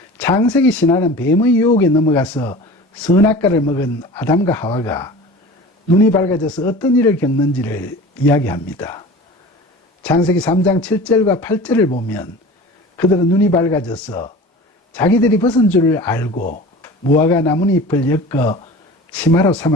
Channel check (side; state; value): both; normal; correlation 0.38